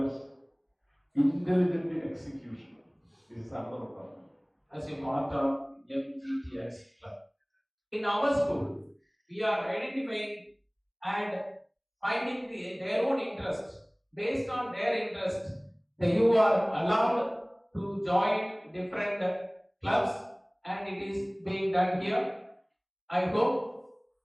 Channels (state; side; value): identical; both; correlation 1.00